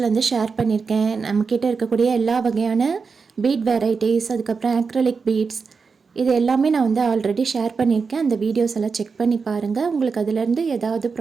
வந்து ஷேர் பண்ணியிருக்கேன். நம்மக்கிட்ட இருக்கக்கூடிய எல்லா வகையான பீட் வெரைட்டிஸ், அதுக்கப்புறம் ஆக்ரிலிக் பீட்ஸ், இது எல்லாமே நான் வந்து ஆல்ரெடி ஷேர் பண்ணியிருக்கேன். அந்த வீடியோஸ் எல்லாம் செக் பண்ணி பாருங்கள். உங்களுக்கு அதிலேருந்து ஏதாவது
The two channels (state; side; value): quieter; left; 5.1 dB